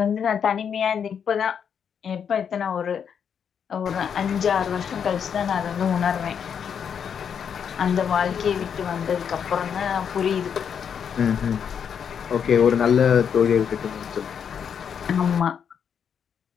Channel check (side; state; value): right; quieter; 7.5 dB